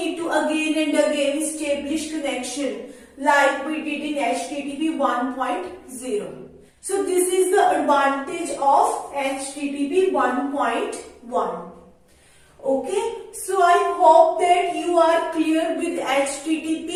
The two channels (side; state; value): both; identical; correlation 1.00